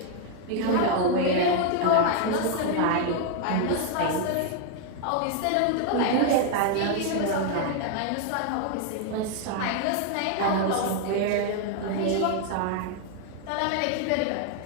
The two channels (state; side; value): different; both; correlation 0.00